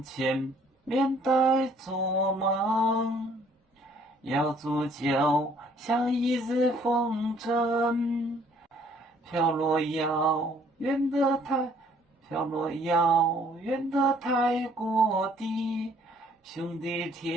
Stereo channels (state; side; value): normal; both; correlation 0.61